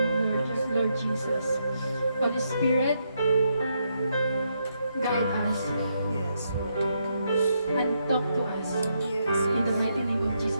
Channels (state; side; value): inverted; both; correlation -0.79